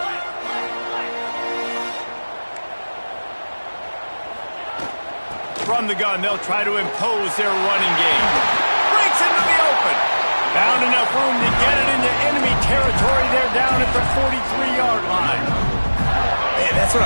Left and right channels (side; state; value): both; inverted; correlation -1.00